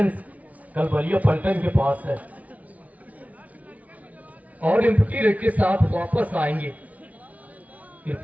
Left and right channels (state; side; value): late; left; 0.070 ms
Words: कलबलिया पलटन के पास है, और एम्प्टी रेट के साथ वापस आएंगे